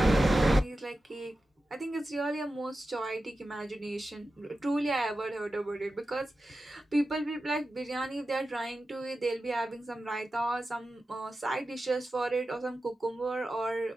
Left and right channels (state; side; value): normal; both; correlation 0.93